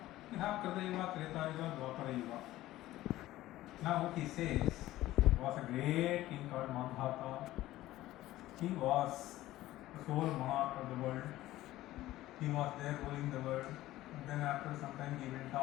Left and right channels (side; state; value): right; quieter; 15.8 dB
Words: You have Kritayuga, Tretayuga, Dwapara Yuga. Now what he says, was a great king called Mandhata. He was the sole monarch of the world. He was there ruling the world. And then after some time he went